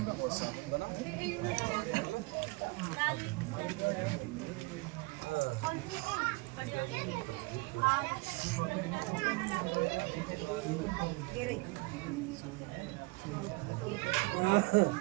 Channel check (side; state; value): left; quieter; 25.8 dB